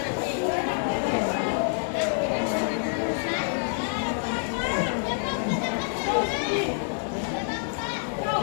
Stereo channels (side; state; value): right; silent; digital silence